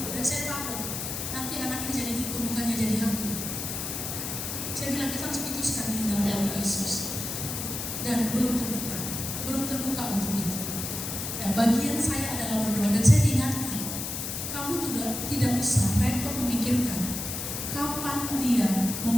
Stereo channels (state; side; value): noise; left; hiss, 4 dB below the sound